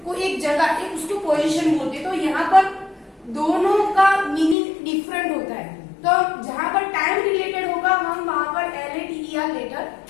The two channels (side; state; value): right; drops out; at 4.5 s